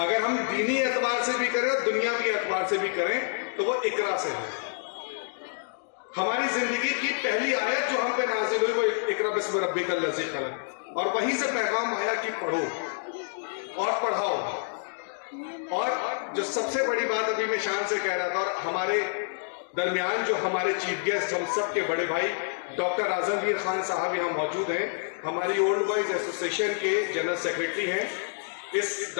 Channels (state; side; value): silent; right; digital silence